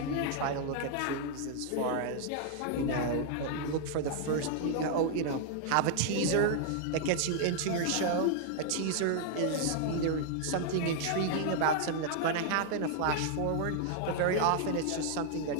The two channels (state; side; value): different; both; correlation -0.01